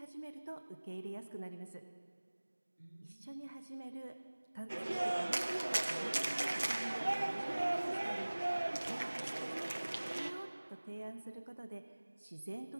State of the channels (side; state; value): both; inverted; correlation -1.00